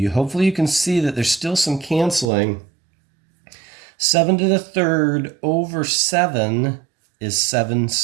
hopefully you can see that there's still some canceling. 7 to the third over 7 is 7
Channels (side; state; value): left; drops out; at 2.3 s